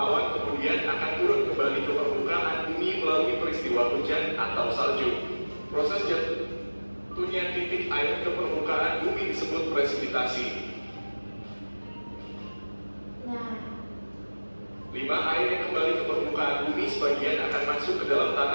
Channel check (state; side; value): inverted; both; correlation -1.00